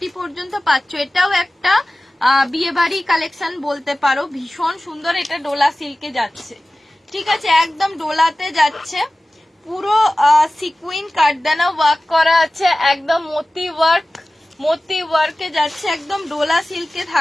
পর্যন্ত পাচ্ছ। এটাও একটা বিয়ে বাড়ি কালেকশন বলতে পারো, ভীষণ সুন্দর। এটা ডোলা সিল্কে যাচ্ছে, ঠিক আছে, একদম ডোলাতে যাচ্ছে, পুরো সিকুইন কাটদানা ওয়ার্ক করা আছে, একদম মোতি ওয়ার্কে যাচ্ছে, একদম ডোলা সিল্কে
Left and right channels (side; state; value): both; normal; correlation 0.97